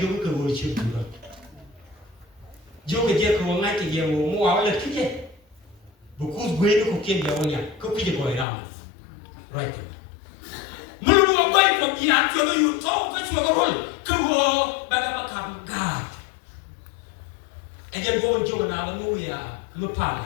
ke gua kecil juga. Jauh ke dia ke wangai ke dia mau awal lagi je. Bukus gue itu kukian dia wanya, kukian gua ramai. Right. Mulu gua itu dia kalau you tahu ke cuma gua gua bagaimana gad. Ajar gua banjir nak lalu ya, lupa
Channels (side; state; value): right; drops out; at 8.5 s